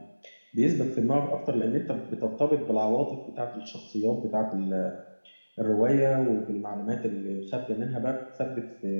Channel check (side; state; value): both; inverted; correlation -1.00